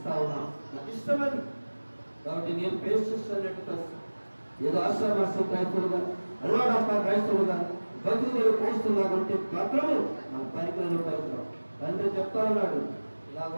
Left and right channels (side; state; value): both; inverted; correlation -1.00